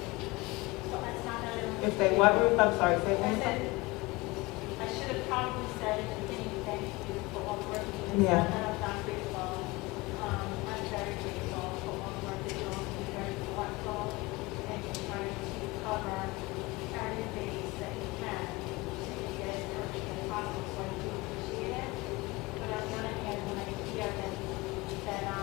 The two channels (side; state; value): right; quieter; 22.8 dB